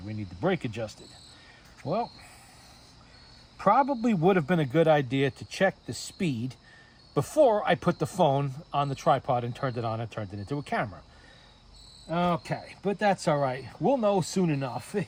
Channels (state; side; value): identical; both; correlation 1.00